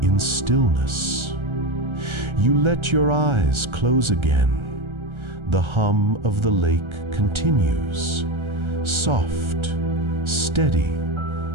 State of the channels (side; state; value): left; late; 1.3 ms